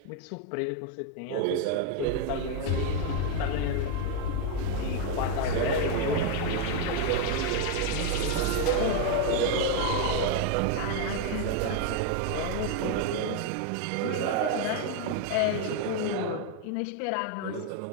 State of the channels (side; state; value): both; different; correlation 0.01